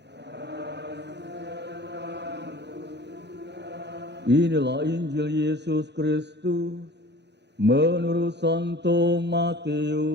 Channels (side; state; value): left; late; 0.50 ms